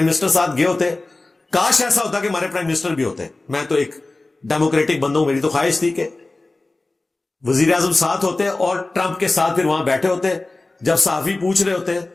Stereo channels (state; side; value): quieter; right; 3.1 dB